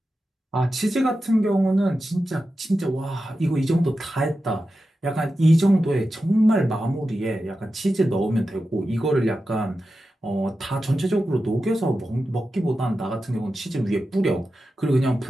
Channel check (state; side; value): normal; both; correlation 0.91